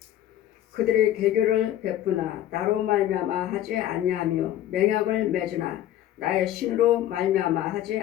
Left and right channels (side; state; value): right; quieter; 12.4 dB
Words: 그들의 개교를 베푸나 나로 말미암아 하지 아니하며 맹약을 맺으나 나의 신으로 말미암아 하지